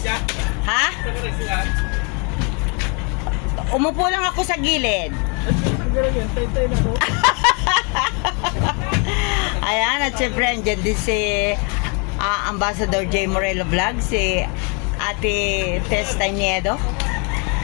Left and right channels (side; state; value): right; quieter; 34.5 dB